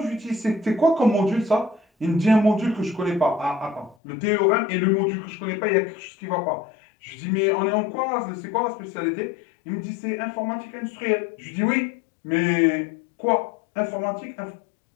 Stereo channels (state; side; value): drops out; right; at 4.0 s